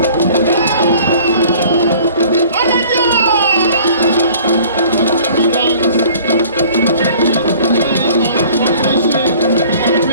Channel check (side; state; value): both; inverted; correlation -0.50